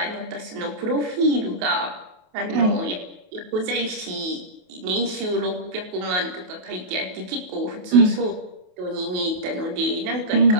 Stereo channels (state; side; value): late; left; 28 ms